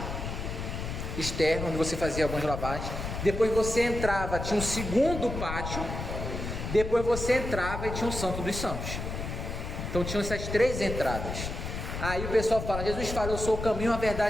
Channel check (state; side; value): noise; left; rumble, 5 dB below the sound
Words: externo, onde você fazia algumas lavagens. Depois você entrava, tinha um segundo pátio. Depois você entrava e tinha o Santo dos Santos. Então tinham essas 3 entradas. Aí o pessoal fala, Jesus fala, eu sou o caminho, a